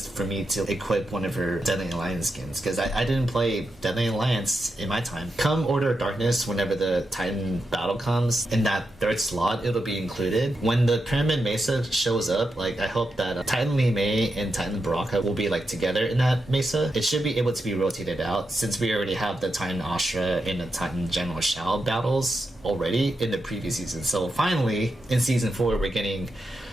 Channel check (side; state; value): both; normal; correlation 0.86